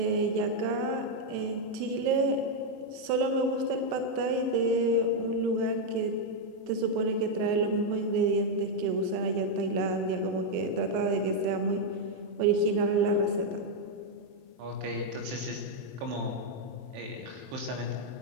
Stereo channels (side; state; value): left; late; 23 ms